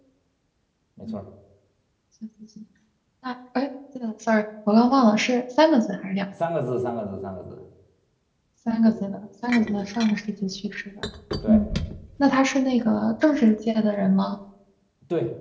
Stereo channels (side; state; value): both; identical; correlation 1.00